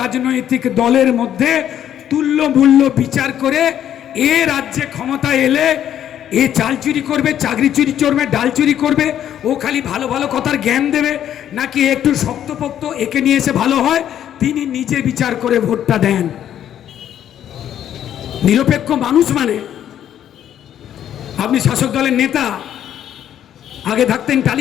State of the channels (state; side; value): quieter; right; 10.5 dB